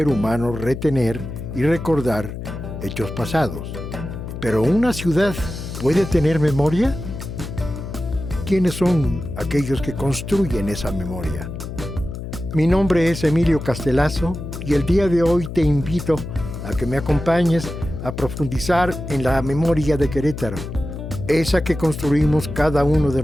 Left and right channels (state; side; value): noise; left; hum, 8 dB below the sound